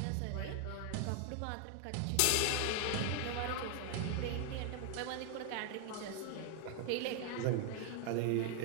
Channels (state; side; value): different; both; correlation 0.00